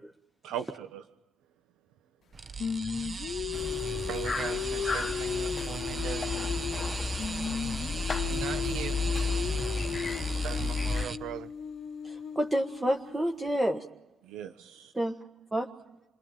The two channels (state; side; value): normal; both; correlation 0.82